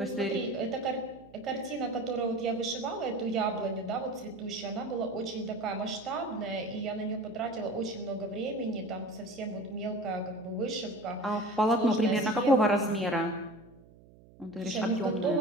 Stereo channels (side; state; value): right; noise; hum, 24 dB below the sound